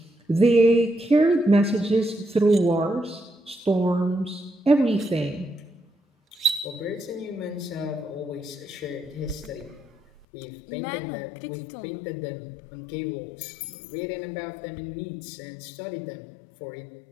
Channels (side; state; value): right; drops out; at 10.2 s